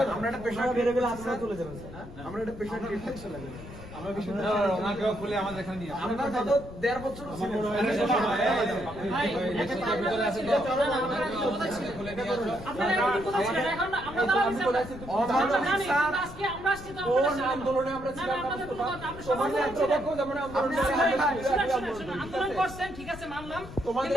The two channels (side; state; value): left; noise; rumble, 14 dB below the sound